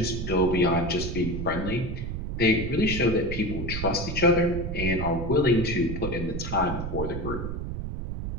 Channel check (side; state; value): right; noise; rumble, 4 dB below the sound